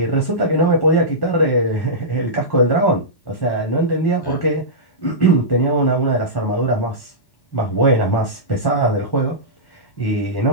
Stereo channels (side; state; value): right; late; 1.1 ms